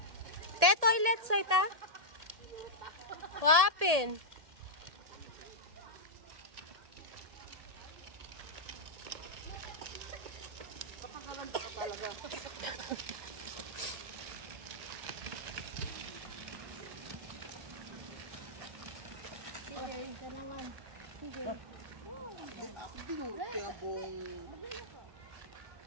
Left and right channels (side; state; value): left; late; 1.7 ms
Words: Te, toilet, Saita? Wapin.